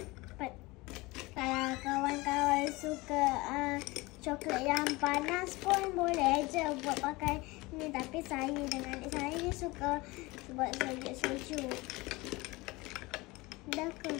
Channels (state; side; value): quieter; right; 22.4 dB